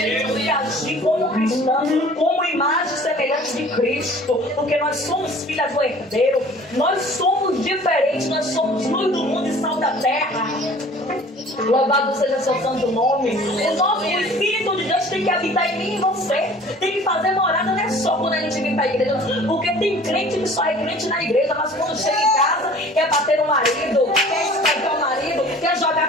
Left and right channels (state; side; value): normal; both; correlation 0.48